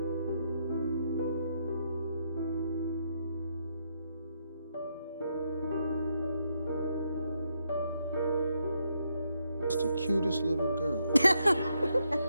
Just the cutest little girl.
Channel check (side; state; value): both; inverted; correlation -0.78